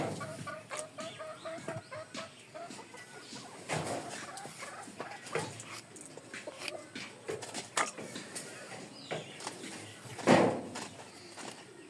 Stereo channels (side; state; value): both; identical; correlation 1.00